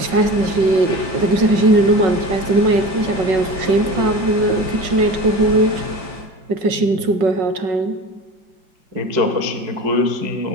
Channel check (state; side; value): late; left; 5.4 ms